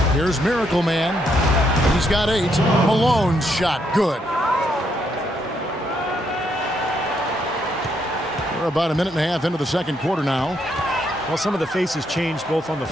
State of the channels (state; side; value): normal; both; correlation 0.75